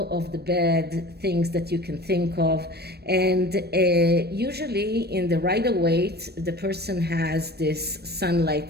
of the bad things that you can think of. And usually in the Rider-Waite, the person has this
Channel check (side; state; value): left; late; 0.47 ms